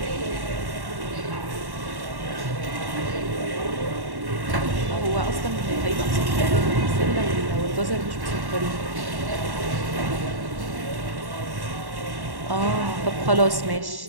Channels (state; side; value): late; left; 1.1 ms